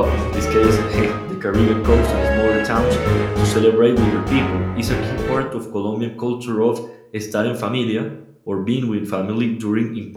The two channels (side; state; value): both; identical; correlation 1.00